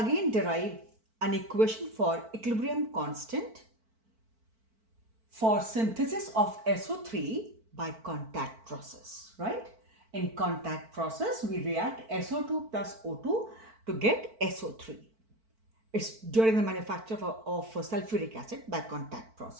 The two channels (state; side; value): late; left; 4.5 ms